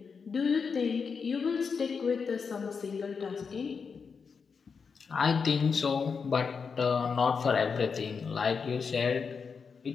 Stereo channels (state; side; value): quieter; right; 5.6 dB